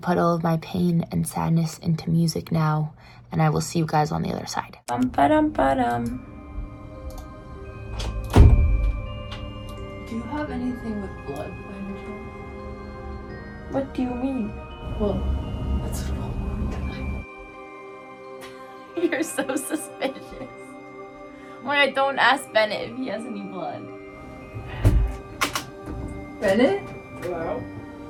all of my pain and sadness into music now, and I will see you guys on the other side. Bum-ba-dum-ba-dum. Do you have anything with blood by any chance? What do you mean? Well, that's what You're so suspicious. Wait, don't ask Bennett if he has any blood. Bennett? Hello?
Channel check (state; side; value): identical; both; correlation 1.00